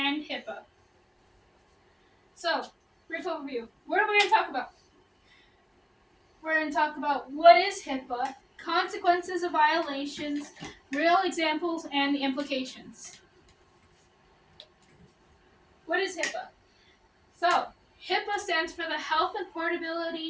HIPAA. So, brief overview. What are we going to talk about? We're going to talk about what is HIPAA, consequences of violations, real examples, and the implications. What is HIPAA? So, HIPAA stands for the Health and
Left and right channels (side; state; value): both; identical; correlation 1.00